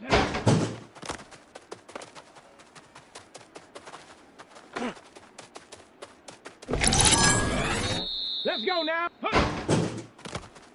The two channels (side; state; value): both; identical; correlation 1.00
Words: Let's go now. Huh.